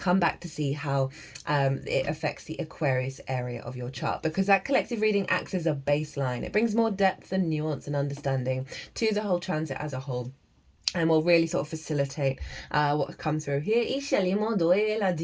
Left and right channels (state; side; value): identical; both; correlation 1.00